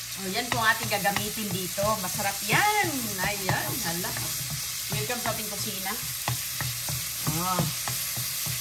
Yan po ang ating gagamitin dito. Masarap yan. Ayan, hala. Welcome sa ating kusina.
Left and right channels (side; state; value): both; identical; correlation 1.00